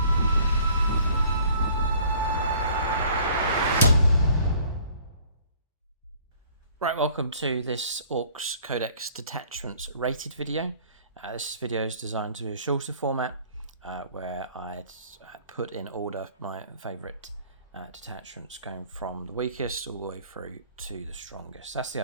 Right, welcome to this Orks Codex Detachments rated video. This video is designed to be a shorter format where I put in order my favourite detachments going from the weakest all the way through to the strongest. That's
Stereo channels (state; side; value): inverted; both; correlation -0.54